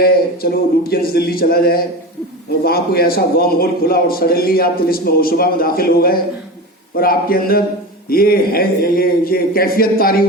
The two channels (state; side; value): normal; both; correlation 0.26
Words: چلو لوٹینس دلی چلا جائے, اور وہاں کوئی ایسا ورم ہول کھلا اور سڈنلی آپ طلسم ہوشبہ میں داخل ہو گئے, اور آپ کے اندر یہ کیفیت طاری